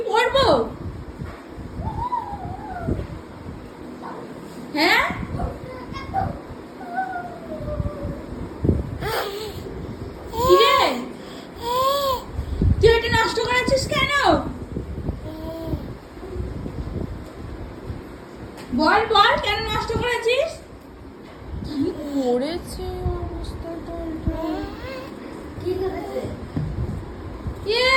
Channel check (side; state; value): both; identical; correlation 1.00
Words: পরবো? হ্যাঁ, কিরে তুই এটা নষ্ট করেছিস কেন? বল বল, কেন নষ্ট করেছিস? কি করেছে অবস্থাটা? কি করেছে?